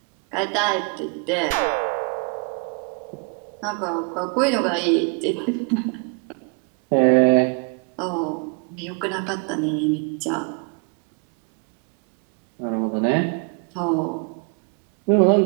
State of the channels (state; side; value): quieter; left; 37.4 dB